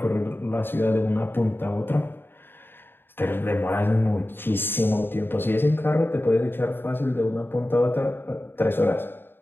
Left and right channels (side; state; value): right; late; 0.10 ms